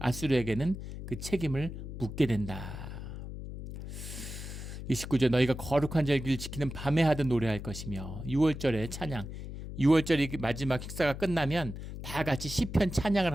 그 책임을 묻게 된다. 29절 너희가 거룩한 절기를 지키는 밤에 하듯 노래할 것이며 6월절에 찬양 6월절이 마지막 식사가 끝나면 다 같이 시편 찬양을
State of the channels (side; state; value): left; noise; hum, 9 dB below the sound